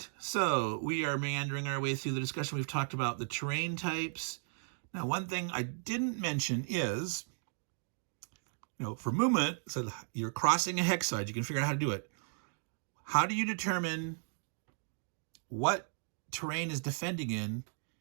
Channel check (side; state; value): left; silent; digital silence